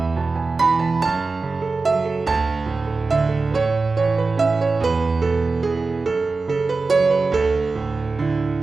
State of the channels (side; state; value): left; quieter; 3.9 dB